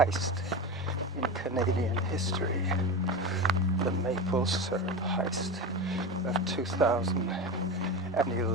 in Canadian history, the maple syrup heist of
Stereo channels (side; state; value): both; normal; correlation 0.22